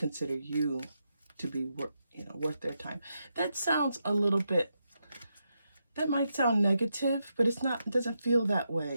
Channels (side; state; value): both; inverted; correlation -0.84